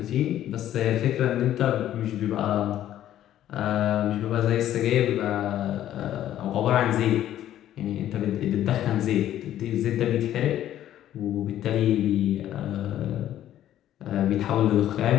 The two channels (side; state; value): right; quieter; 12.1 dB